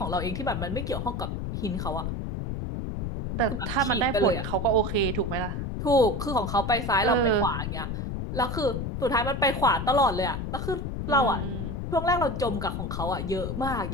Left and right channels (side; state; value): left; noise; rumble, 4 dB below the sound